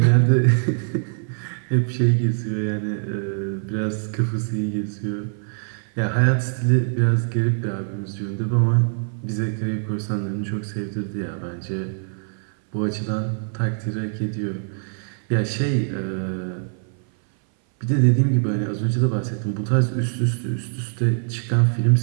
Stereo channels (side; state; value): left; silent; 59 dB below the other